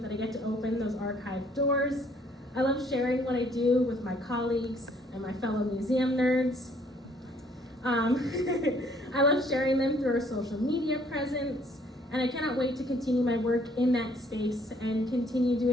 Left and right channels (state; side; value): normal; both; correlation 0.63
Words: that I get to open those archive doors. I love sharing what I do with my colleagues and my fellow museum nerds. I love sharing them through our social media presence, and I cannot wait to continue my work in that space and continue